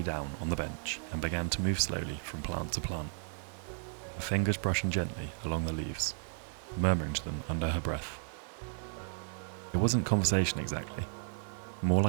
down on the bench and began to move slowly from plant to plant, her fingers brushing gently along the leaves, murmuring to them under her breath. It wasn't conversation exactly, more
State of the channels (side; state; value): left; silent; 55 dB below the other